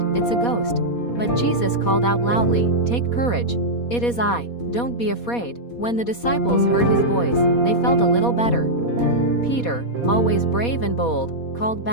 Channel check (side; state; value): right; late; 4.2 ms